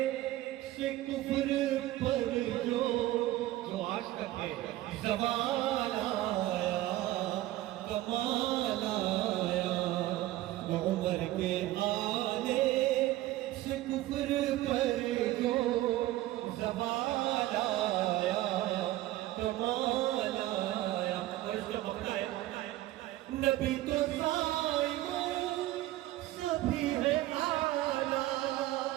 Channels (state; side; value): quieter; left; 15.9 dB